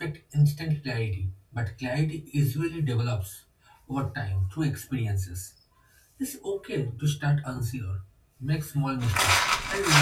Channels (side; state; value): both; identical; correlation 1.00